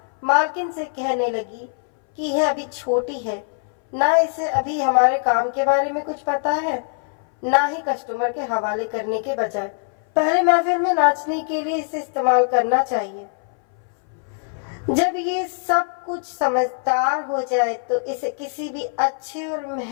मालकिन से कहने लगी कि यह अभी छोटी है, ना इसे अभी हमारे काम के बारे में कुछ पता है, ना ही कस्टमर के हवाले करने के बजाय पहले महफिल में नाचने के लिए इसे इस्तेमाल करना चाहिए। जब ये सब कुछ समझदार हो जाए तो इसे किसी भी अच्छे और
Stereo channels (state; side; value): silent; right; 61 dB below the other